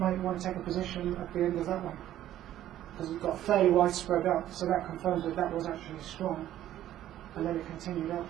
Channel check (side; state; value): left; quieter; 12.6 dB